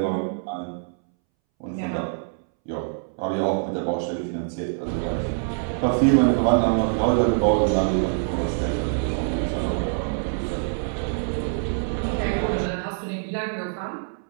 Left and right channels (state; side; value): silent; left; 62 dB below the other